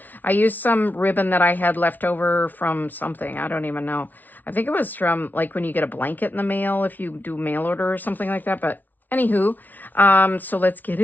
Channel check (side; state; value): right; late; 0.082 ms